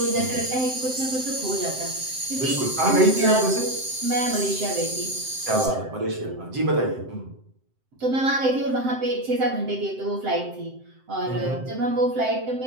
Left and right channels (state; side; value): late; left; 7.7 ms